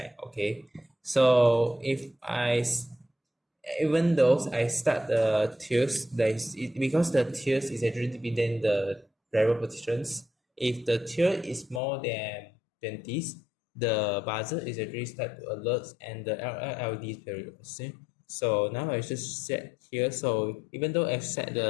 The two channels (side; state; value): right; drops out; at 11.8 s